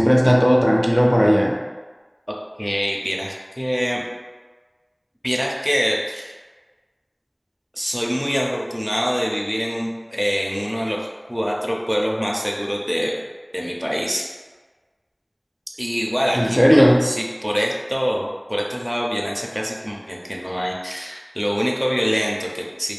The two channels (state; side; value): identical; both; correlation 1.00